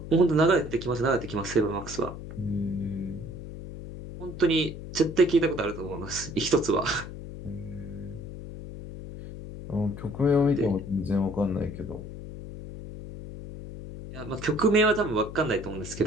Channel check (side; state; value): left; noise; hum, 11 dB below the sound